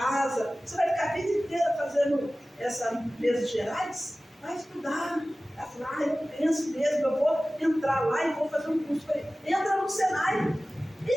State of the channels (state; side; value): normal; both; correlation 0.97